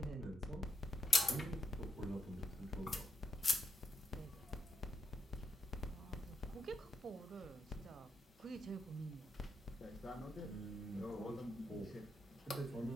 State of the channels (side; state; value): both; normal; correlation 0.80